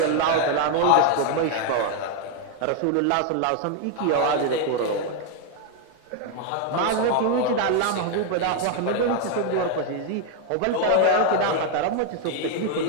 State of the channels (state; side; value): different; both; correlation 0.01